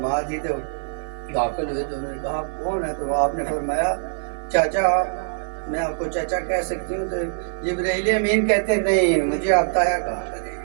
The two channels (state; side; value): silent; left; 57 dB below the other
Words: دی، تو داخل ہوئے تو انہوں نے کہا آپ کون ہے؟ تو آپ نے فرمایا چاچا، میں آپ کو چاچا کہہ سکتی ہوں؟ تو جبرائیل امین کہتے نہیں، مجھے آتا ہے کہا کریں.